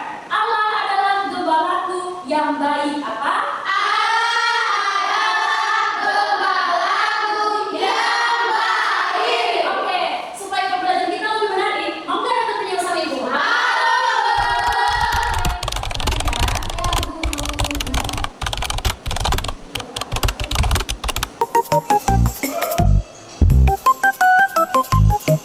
Allah adalah gembalaku yang baik. Apa?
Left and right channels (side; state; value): both; identical; correlation 1.00